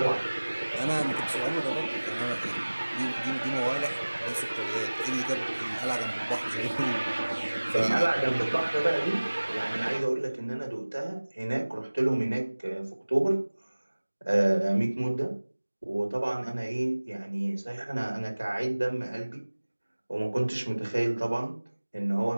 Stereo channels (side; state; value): both; inverted; correlation -1.00